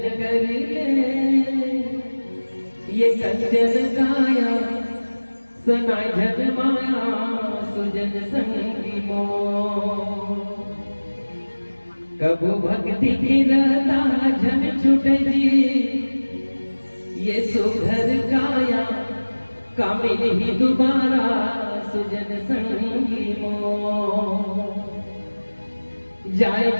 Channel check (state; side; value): inverted; both; correlation -1.00